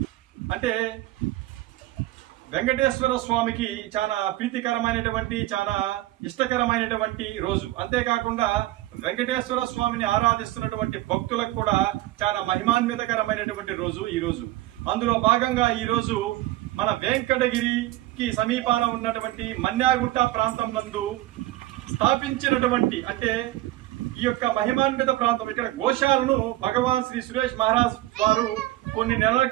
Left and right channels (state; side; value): quieter; left; 16.8 dB